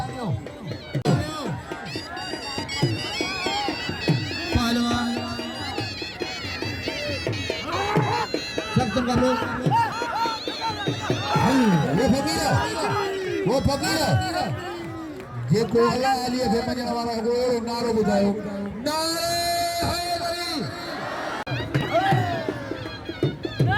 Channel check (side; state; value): both; identical; correlation 1.00